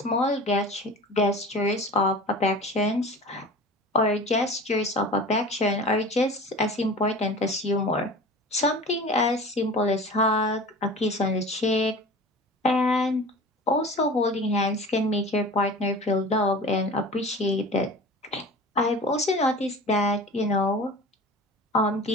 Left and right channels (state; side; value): normal; both; correlation 0.37